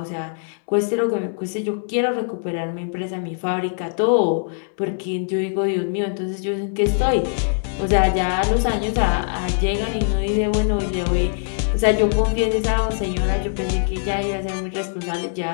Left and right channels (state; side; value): silent; right; 64 dB below the other